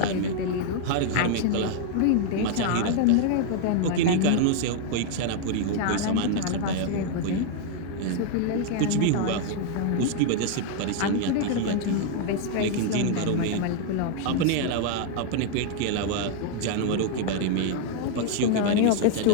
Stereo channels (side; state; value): both; different; correlation 0.00